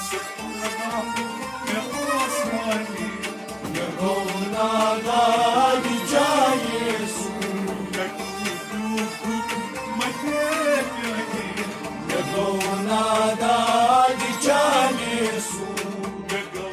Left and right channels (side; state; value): both; identical; correlation 1.00